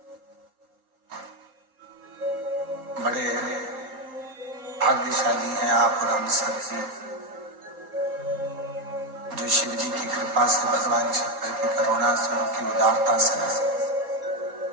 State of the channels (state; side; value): late; left; 3.8 ms